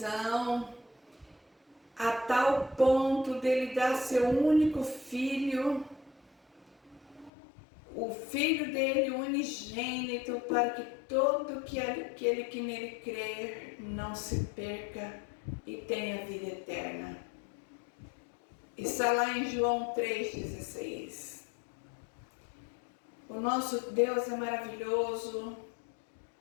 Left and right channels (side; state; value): right; drops out; at 7.3 s